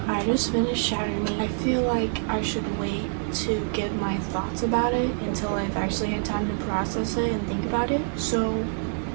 I just finished Shatter Me. I feel like I should wait to give my thoughts about it until I've actually had time to process it and think about it. So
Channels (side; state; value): left; silent; digital silence